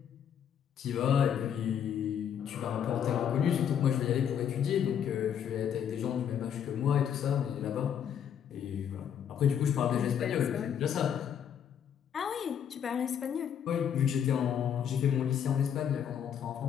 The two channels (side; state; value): right; quieter; 8.6 dB